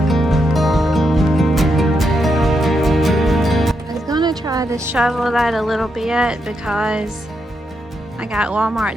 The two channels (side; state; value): both; normal; correlation 0.82